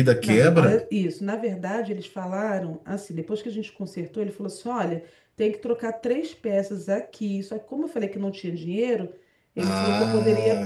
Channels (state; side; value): identical; both; correlation 1.00